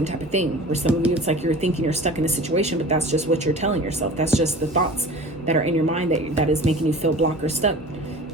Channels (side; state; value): both; normal; correlation 0.40